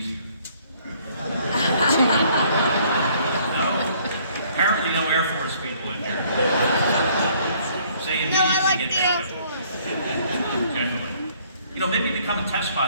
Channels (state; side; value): inverted; both; correlation -0.61